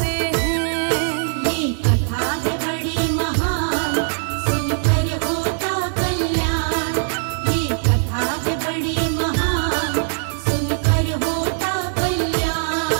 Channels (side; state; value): left; silent; 65 dB below the other